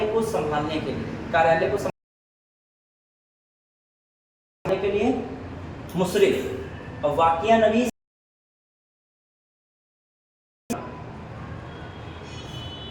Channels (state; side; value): identical; both; correlation 1.00